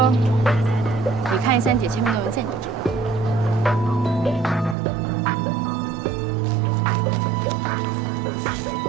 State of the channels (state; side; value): drops out; left; at 4.8 s